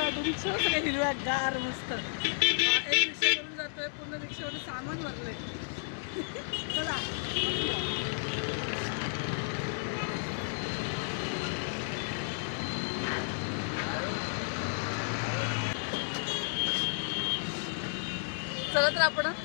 रिक्षा सगळे हिरव्या गार मस्त. एक रिक्षा करून जातोय, पूर्ण रिक्षामध्ये सामान भरलंय. चला चला तर आपण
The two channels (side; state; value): right; silent; digital silence